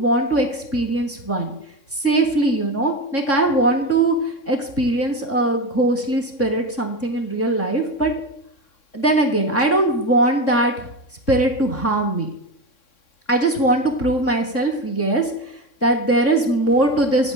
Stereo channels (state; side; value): late; right; 3.6 ms